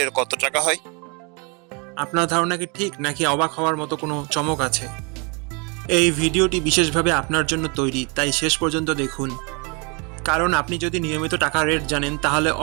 কত টাকা হয়? আপনার ধারণা কি ঠিক, নাকি অবাক হওয়ার মতো কোনো চমক আছে? এই ভিডিওটি বিশেষভাবে আপনার জন্য তৈরি, তাই শেষ পর্যন্ত দেখুন। কারণ আপনি যদি নিয়মিত টাকার রেট জানেন, তাহলে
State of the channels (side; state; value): left; quieter; 32.6 dB